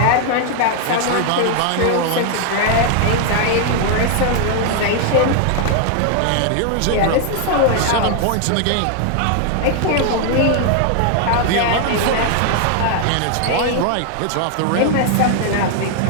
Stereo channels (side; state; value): both; different; correlation 0.00